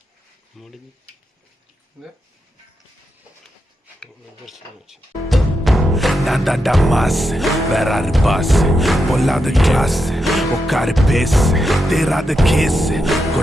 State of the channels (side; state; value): both; normal; correlation 0.85